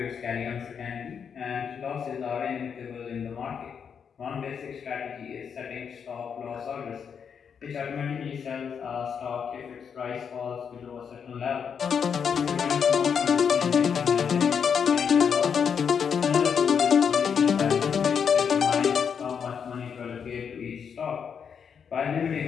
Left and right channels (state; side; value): quieter; right; 7.0 dB